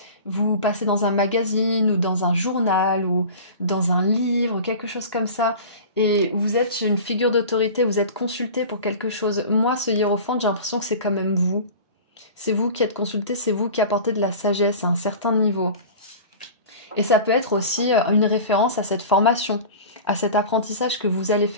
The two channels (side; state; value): both; inverted; correlation -0.36